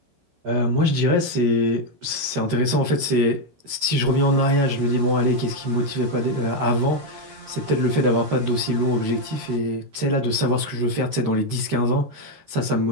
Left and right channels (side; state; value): left; late; 13 ms